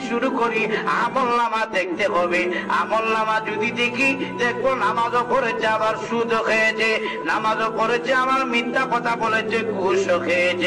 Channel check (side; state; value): both; identical; correlation 1.00